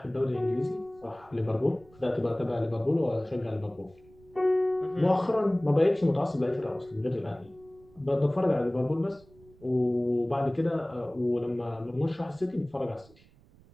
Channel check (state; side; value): noise; right; rumble, 27 dB below the sound